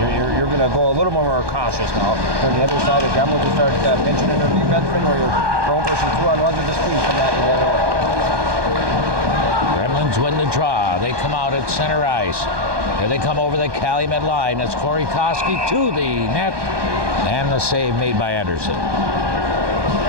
You're going to go a little more cautious now. On the other side, the Gremlins will start pinching into the defenseman, where you're throwing for some 2-on-1s with the speed from that to the other way. Gremlins win the draw. They come out at center ice. Here they come over the Calumet line. It's Corey Koski to the net, and the save made by Anderson.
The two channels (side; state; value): left; late; 1.2 ms